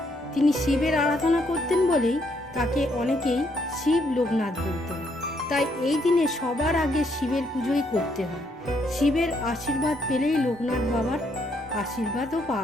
তিনি শিবের আরাধনা করতেন বলেই তাকে অনেকেই শিব লোকনাথ বলতেন। তাই এই দিনে সবার আগে শিবের পুজোই করতে হয়। শিবের আশীর্বাদ পেলেই লোকনাথ বাবার আশীর্বাদও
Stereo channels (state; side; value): normal; both; correlation 0.72